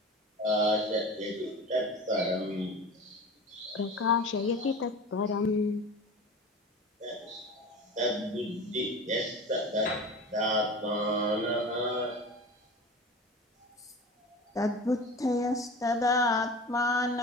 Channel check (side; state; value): both; normal; correlation 0.34